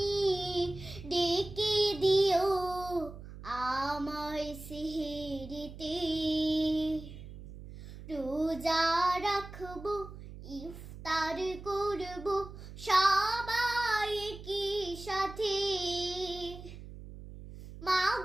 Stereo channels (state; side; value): noise; right; hum, 14 dB below the sound